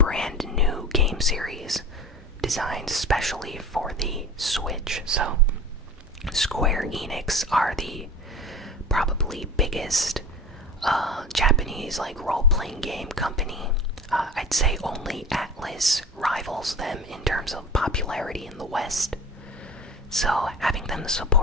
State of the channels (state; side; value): normal; both; correlation 0.35